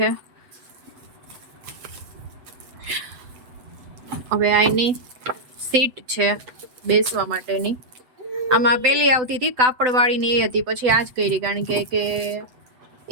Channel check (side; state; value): left; late; 7.9 ms